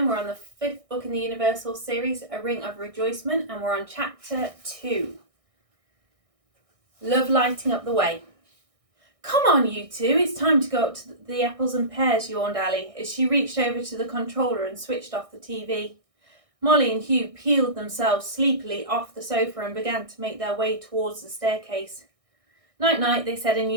We're on the 5th book in the Universal series, A Ring of Rejoicement, and we're on chapter 2. Love lighting up the way. Come on, you two, it's time to go up to the apples and pears, yawned Ali, as she reached over to the controller and switched off the TV. Molly and Hugh peeled themselves sleepily off the sofa and began to make their way towards the staircase. Night-night, they said in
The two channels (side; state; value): left; late; 1.6 ms